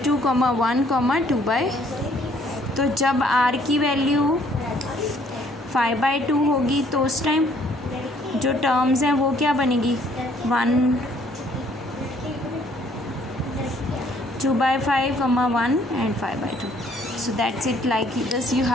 1, 2/, तो जब r की वैल्यू 5/2 होगी तो उस टाइम जो टर्म्स हैं वो क्या बनेगी 1, 2/5, 1 and 5/2। So that's it, like this you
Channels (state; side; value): normal; both; correlation 0.63